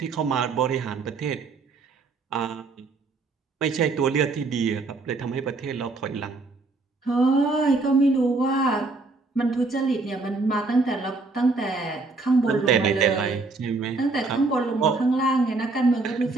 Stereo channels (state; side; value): quieter; left; 3.6 dB